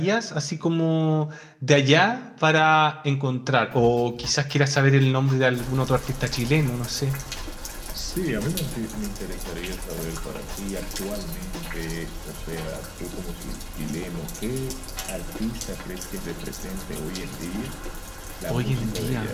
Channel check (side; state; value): both; identical; correlation 1.00